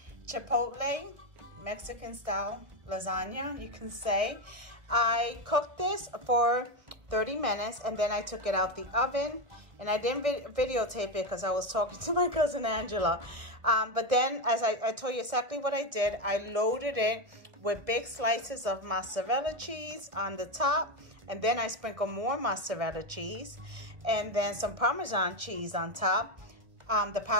chipotle Mexican style lasagna, you can say. I cooked this for 30 minutes and then I took it out the oven, and I didn't videotape it because I was talking to my cousin Angela. But then, as I told you exactly what I did, I loaded it with big slices of mozzarella cheese on the top, and then I sprinkled more mozzarella cheese and then some Parmesan cheese on top, the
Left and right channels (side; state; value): left; late; 1.2 ms